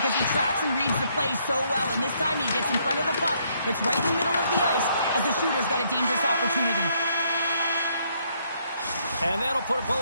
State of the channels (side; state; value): both; inverted; correlation -0.70